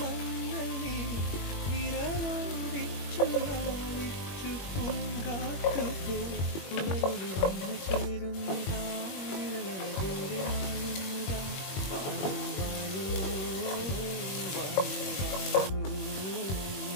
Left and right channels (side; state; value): right; late; 21 ms